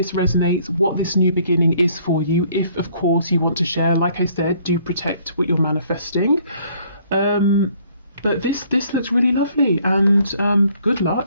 resonates, what this new beginning is for you. If, of course, you want to share, like I said, do protect what you're manifesting. But this looks really lovely, and good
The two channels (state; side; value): inverted; both; correlation -0.62